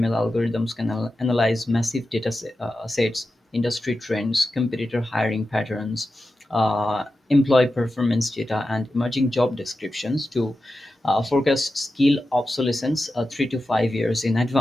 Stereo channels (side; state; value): both; normal; correlation 0.92